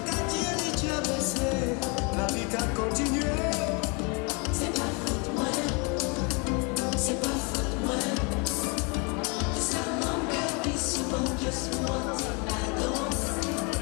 qu'a tiré, tu as baissé, la vie t'a continué. C'est pas faute, moi. C'est pas faute, moi. Ça m'engueule souvent, juste moi, c'est pas danse.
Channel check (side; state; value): right; quieter; 32.1 dB